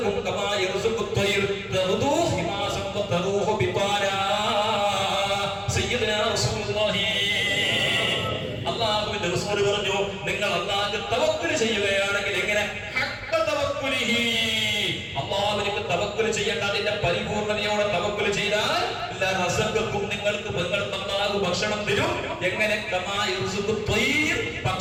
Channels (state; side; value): identical; both; correlation 1.00